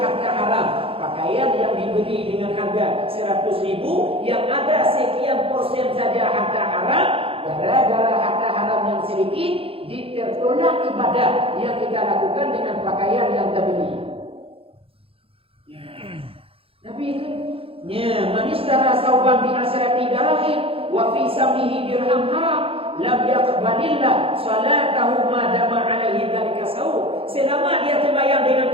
haram. Pakaian yang dibeli dengan harga 100.000, yang ada sekian persen saja harga haram, gara-gara harga haram yang sedikit, ditertolak ibadah yang kita lakukan dengan pakaian yang terbeli. Nabi itu ya, manistara sauban bi asrati dirham wa fi samihi dirham haram lam yaqbalillah salatahu ma dama alaihi dzalika saw. Selama dia sembahyang dengan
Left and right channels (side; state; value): left; late; 0.27 ms